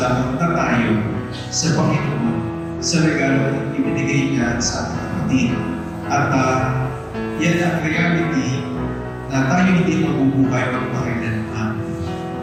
na tayo sa Panginoon sa regalo na ibinigay niya sa ating kapatid. At yan ang reality na tayo hindi mabubuhay magpakailanman.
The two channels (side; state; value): both; identical; correlation 1.00